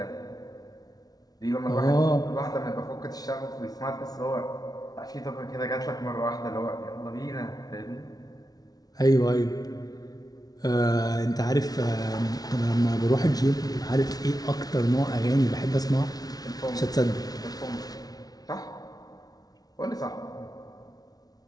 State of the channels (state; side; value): late; right; 0.19 ms